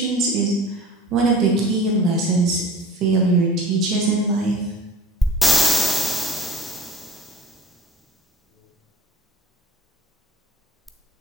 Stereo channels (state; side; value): normal; both; correlation 0.43